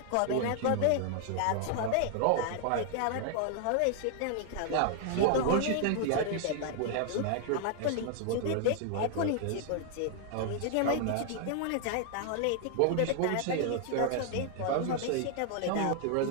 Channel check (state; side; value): different; both; correlation 0.00